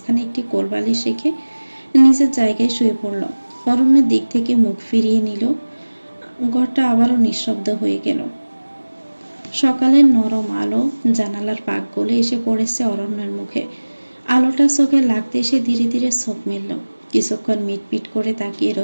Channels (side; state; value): both; inverted; correlation -1.00